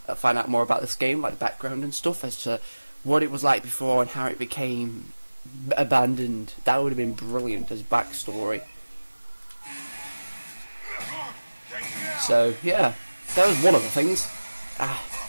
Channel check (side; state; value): both; inverted; correlation -1.00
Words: more about this game, like background and stuff, as to what it was like before and how it became abandoned. That would have been brilliant as backstory. So yeah, that was one of the things.